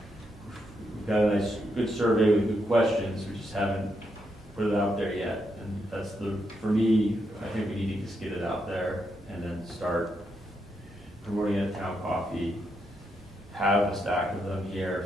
nice, good survey with good questions. We just haven't put it out there yet. And that's for me, I think we need to just get it out there and then start promoting it at Town Coffee. Have a stack of them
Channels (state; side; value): normal; both; correlation 0.81